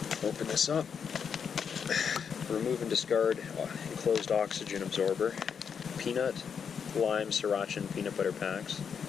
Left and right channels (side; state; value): right; quieter; 6.9 dB